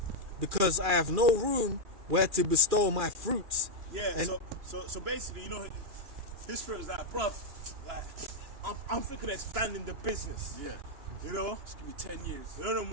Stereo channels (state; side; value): late; left; 2.4 ms